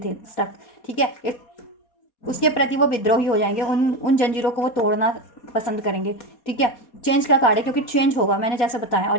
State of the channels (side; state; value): right; late; 4.2 ms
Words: स्टक, ठीक है, एक उसके प्रति वो विद्रोही हो जाएंगे, उन जंजीरों को वो तोड़ना पसंद करेंगे, ठीक है। चेंज का कार्ड है, क्योंकि चेंज होगा, मैंने जैसे बताया,